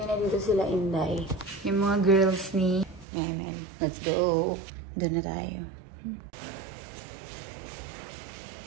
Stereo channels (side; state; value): left; drops out; at 3.1 s